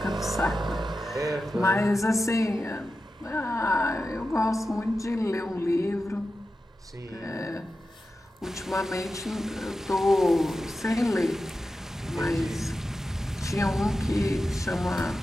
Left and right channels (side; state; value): both; normal; correlation 0.92